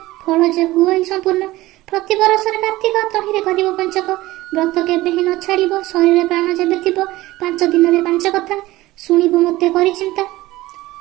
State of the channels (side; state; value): left; quieter; 17.9 dB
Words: फल जे हुए संपूर्ण, प्रति बरस कार्तिक तहिरे करिब पंचक। व्रत केबे ही न छाड़िब, शरीर प्राण जेबे थिब। 5 दिन 5 कथा शुणिब मते करि चिंता।